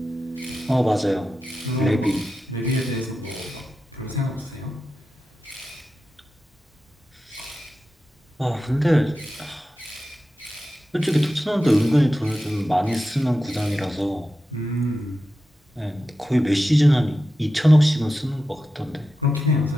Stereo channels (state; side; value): normal; both; correlation 0.91